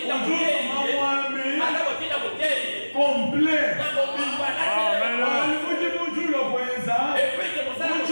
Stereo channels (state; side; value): inverted; both; correlation -1.00